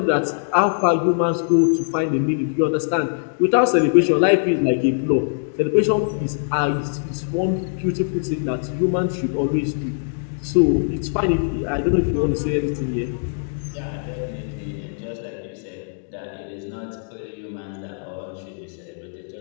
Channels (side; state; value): right; silent; digital silence